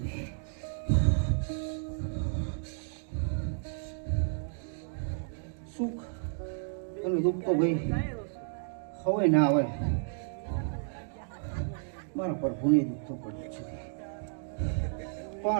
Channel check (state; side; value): silent; left; digital silence